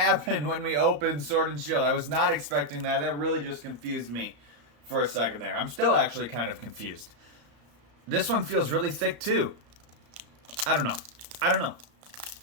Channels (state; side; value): late; left; 34 ms